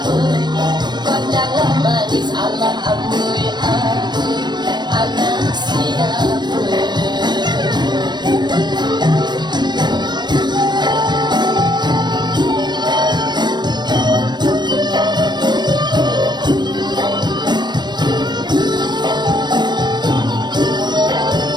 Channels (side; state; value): left; late; 0.21 ms